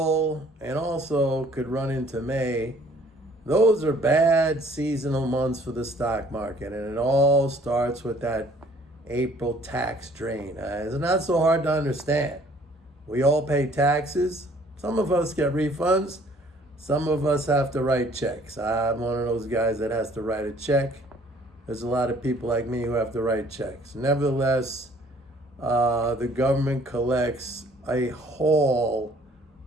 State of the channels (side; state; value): both; normal; correlation 0.57